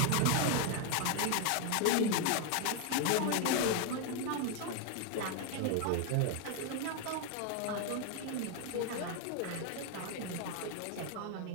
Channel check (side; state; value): both; different; correlation 0.01